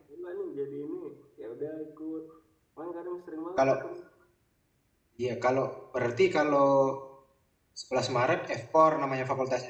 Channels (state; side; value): identical; both; correlation 1.00